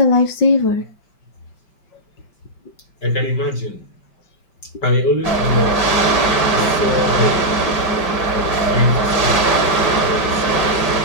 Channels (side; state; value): right; late; 5.2 ms